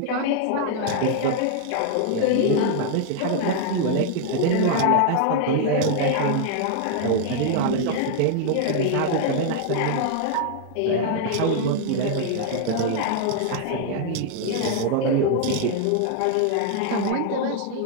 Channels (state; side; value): different; both; correlation 0.00